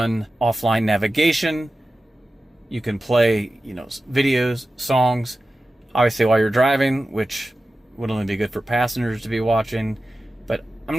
offline navigation. You can play, videos, songs, obviously while you're driving, which would only be good for passengers to be watching. But I'm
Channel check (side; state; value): both; normal; correlation 0.94